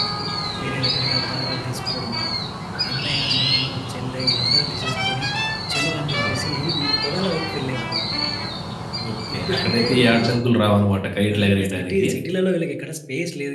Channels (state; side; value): identical; both; correlation 1.00